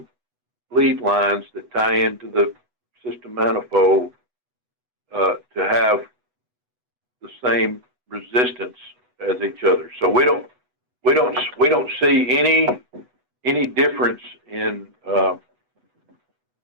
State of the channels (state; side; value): late; left; 8.1 ms